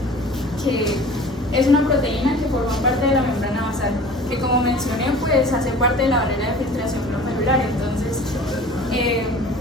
que es una proteína que forma parte de la membrana basal, que como mencioné, pues hace parte de la barrera de filtración glomerular. Entonces,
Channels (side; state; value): both; normal; correlation 0.43